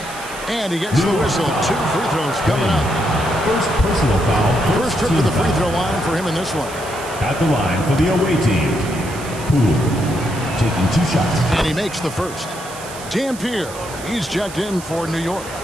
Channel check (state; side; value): noise; right; hiss, 15 dB below the sound